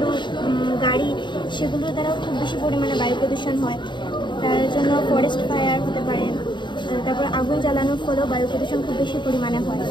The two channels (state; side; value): late; right; 0.22 ms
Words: গাড়ি, সেগুলোর দ্বারাও খুব বেশি পরিমাণে বায়ু প্রদূষণ হয়। তার জন্য ফরেস্ট ফায়ার হতে পারে। তারপর আগুন জ্বালানোর ফলেও বায়ু প্রদূষণ খুব বেশি পরিমাণে হয়।